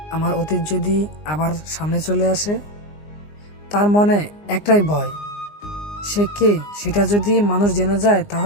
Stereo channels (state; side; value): late; right; 19 ms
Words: আমার অতীত যদি আবার সামনে চলে আসে। তার মনে একটাই ভয়, সে কে সেটা যদি মানুষ জেনে যায়